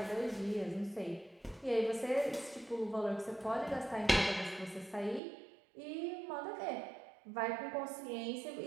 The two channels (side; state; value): left; drops out; at 5.2 s